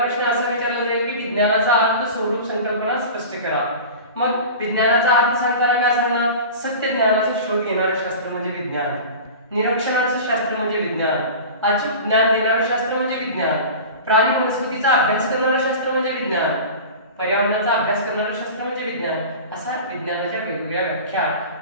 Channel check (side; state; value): both; inverted; correlation -0.34